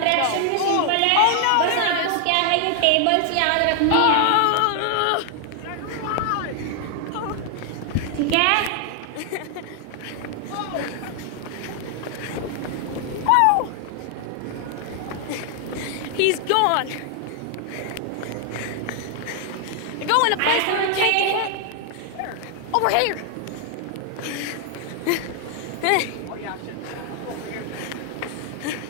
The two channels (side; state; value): both; different; correlation 0.00